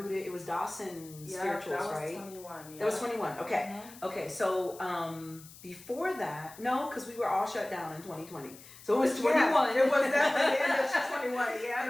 It was Dawson Spirituals, that was right? 21. That was 21. Okay. Okay. So before that, no, because we were all shut down in 2020. So it was 21. Yeah, it was definitely the end of 21. Yeah,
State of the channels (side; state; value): left; noise; hiss, 19 dB below the sound